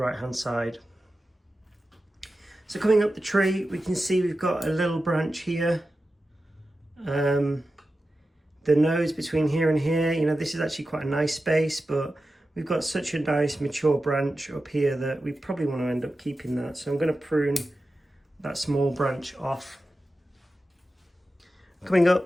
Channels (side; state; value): both; normal; correlation 0.93